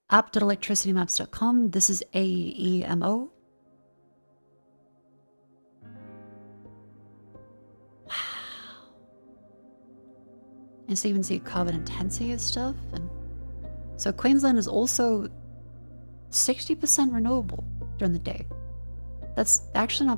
app.electricitymaps.com. This is AEMO. Wow. And so you even see carbon intensity and stuff. And so Queensland is also 60% renewable during the day. That's actually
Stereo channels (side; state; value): both; inverted; correlation -1.00